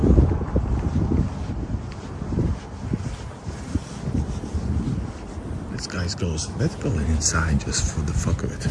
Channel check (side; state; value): both; identical; correlation 1.00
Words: This guy goes. Let's go inside just for the fuck of it.